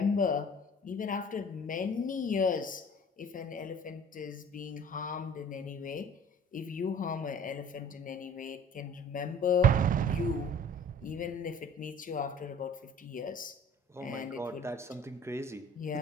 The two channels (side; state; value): both; normal; correlation 0.47